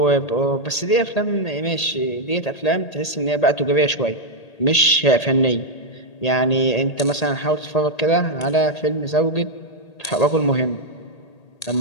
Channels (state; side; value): late; right; 1.8 ms